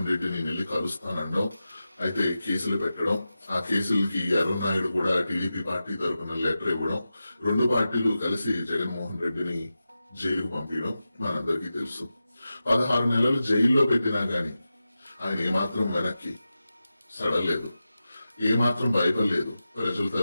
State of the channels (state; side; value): inverted; both; correlation -0.93